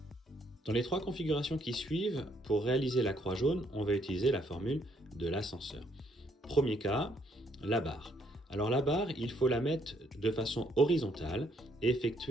Dans les trois configurations qui suivent, pour réaliser la croix jaune, on va utiliser la formule de l'ascenseur. Premier cas, la barre. Alors la barre, il faut la mettre de façon horizontale et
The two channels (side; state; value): both; normal; correlation 0.70